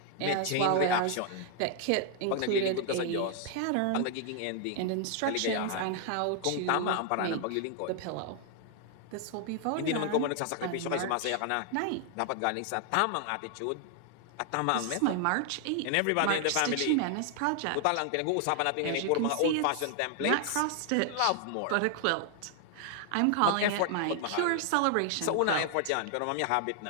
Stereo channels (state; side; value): different; both; correlation 0.00